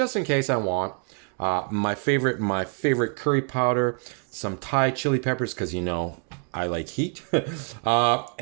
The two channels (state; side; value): quieter; left; 38.3 dB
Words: in case I want. My favorite curry powder, some Thai chili peppers, because you know I like heat,